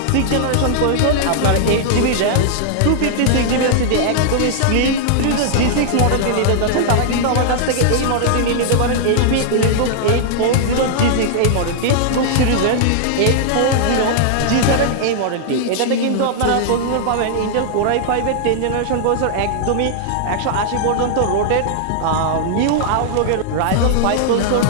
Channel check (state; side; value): different; both; correlation -0.01